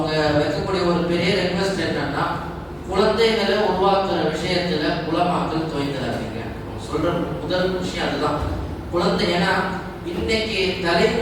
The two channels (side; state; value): both; identical; correlation 1.00